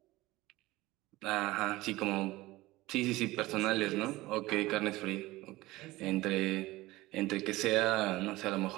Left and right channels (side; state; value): left; quieter; 18.9 dB